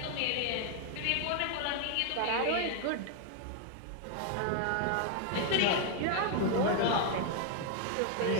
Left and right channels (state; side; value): different; both; correlation 0.00